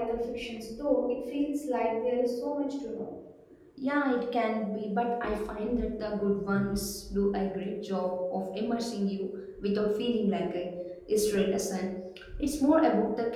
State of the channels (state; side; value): identical; both; correlation 1.00